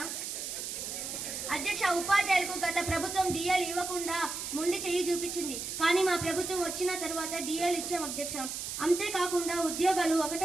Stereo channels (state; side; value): noise; right; hiss, 5 dB below the sound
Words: ఉపాధ్యాయులకు గత ప్రభుత్వం డిఎల్ ఇవ్వకుండా మొండి చెయ్యి చూపించింది. కానీ మా ప్రభుత్వం వచ్చిన తర్వాత డిఎల్ ఇచ్చాం అధ్యక్ష. అంతేకాకుండా ఉద్యోగాలు